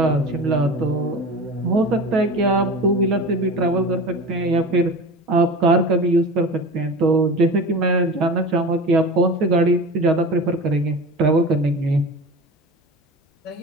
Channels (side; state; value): both; normal; correlation 0.33